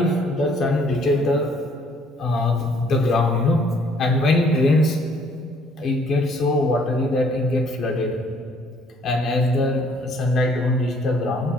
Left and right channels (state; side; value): normal; both; correlation 0.62